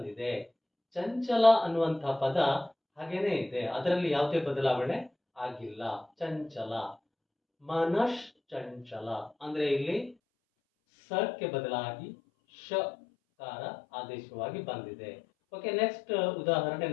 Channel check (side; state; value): right; drops out; at 10.2 s